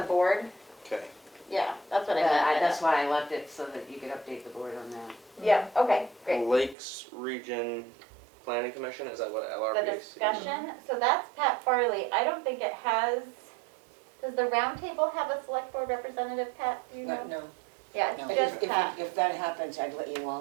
board. Okay. Yeah, that's what I But meant. by that's that. why I left it so that you could update the board on that. Yeah, okay, great. Lakes Region Planning Commission, is that what The LRPC? discussion, so that's Pat Farley. I don't think it has, does the roundtable have a select board representative, Pat, do you know? No, Yeah, no. it's just If Pat. if that happens, I'd let you all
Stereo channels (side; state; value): left; drops out; at 6.8 s